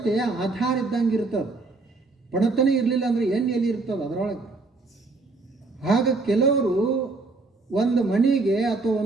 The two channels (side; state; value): left; quieter; 3.6 dB